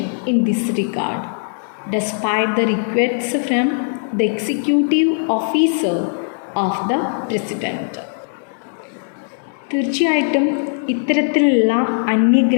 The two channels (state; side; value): silent; right; digital silence